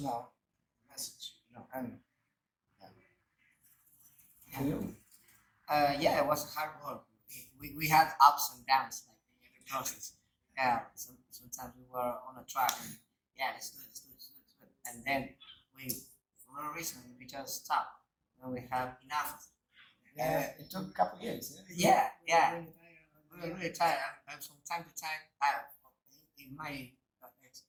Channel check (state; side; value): identical; both; correlation 1.00